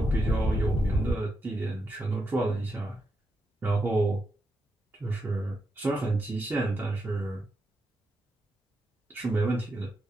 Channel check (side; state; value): both; normal; correlation 0.84